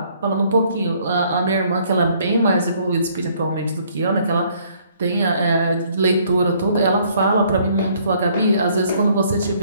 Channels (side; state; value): both; inverted; correlation -0.63